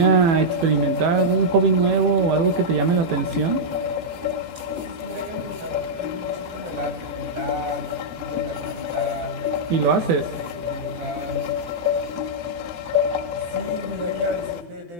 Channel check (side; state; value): left; late; 17 ms